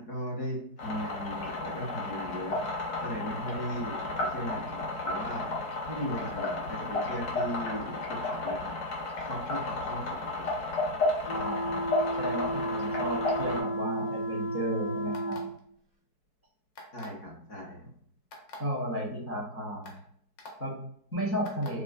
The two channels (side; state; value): right; late; 4.7 ms